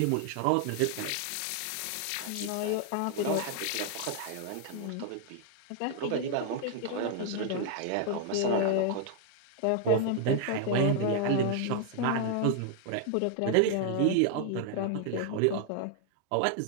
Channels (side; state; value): both; different; correlation 0.00